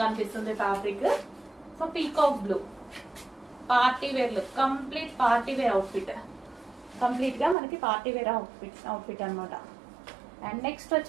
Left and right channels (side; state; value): left; drops out; at 7.6 s